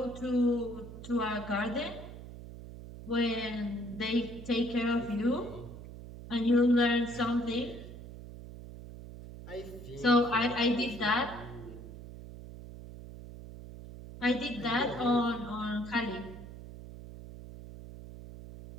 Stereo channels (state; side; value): noise; right; hum, 13 dB below the sound